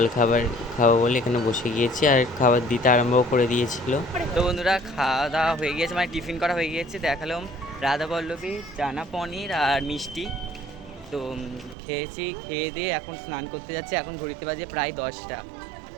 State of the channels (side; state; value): left; drops out; at 11.8 s